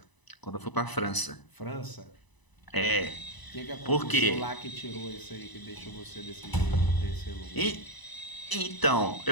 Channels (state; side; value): late; right; 1.0 ms